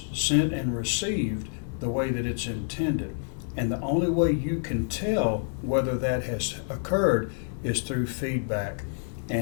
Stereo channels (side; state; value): right; silent; digital silence